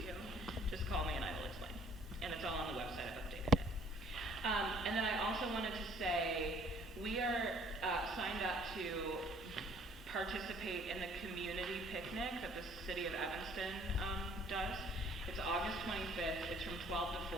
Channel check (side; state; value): both; normal; correlation 0.58